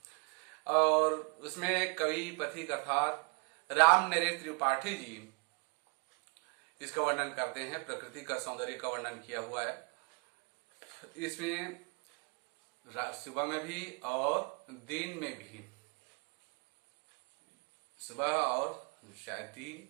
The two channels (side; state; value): left; quieter; 34.7 dB